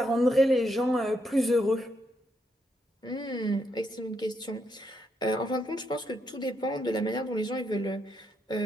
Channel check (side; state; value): both; normal; correlation 0.79